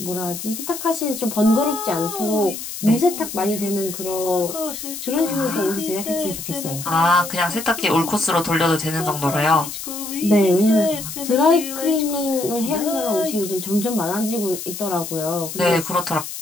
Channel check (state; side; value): noise; left; hiss, 8 dB below the sound